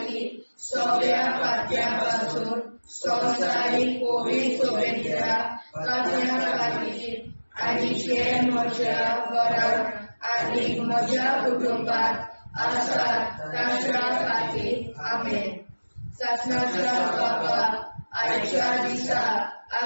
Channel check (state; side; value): inverted; both; correlation -1.00